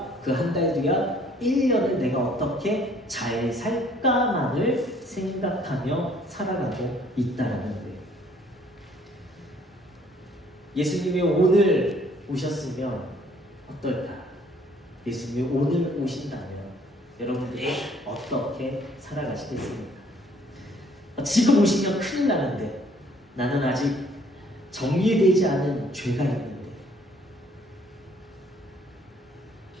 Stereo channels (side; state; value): both; normal; correlation 0.61